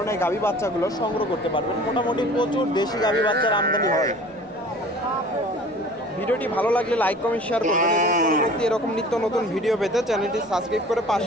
গাভী বাচ্চাগুলো সংগ্রহ করতে পারবেন। মোটামুটি প্রচুর দেশি গাভী বাচ্চার আমদানি হয়। ভিডিওটি ভালো লাগলে লাইক কমেন্ট শেয়ার করবেন এবং পরবর্তী এরকম নিত্য নতুন ভিডিও পেতে চ্যানেলটি সাবস্ক্রাইব করে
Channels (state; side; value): normal; both; correlation 0.45